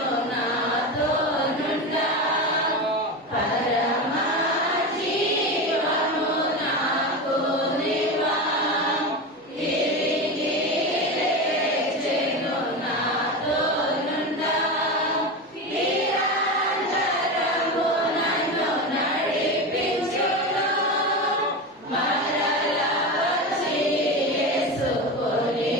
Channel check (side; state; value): both; normal; correlation 0.21